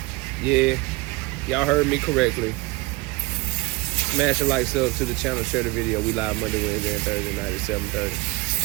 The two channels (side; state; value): left; quieter; 22.6 dB